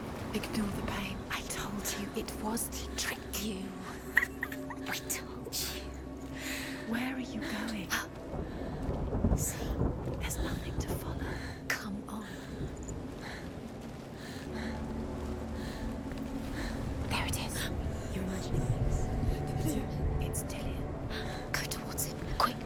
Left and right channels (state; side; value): identical; both; correlation 1.00